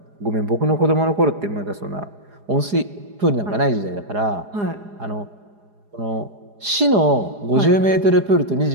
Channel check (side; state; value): left; late; 4.9 ms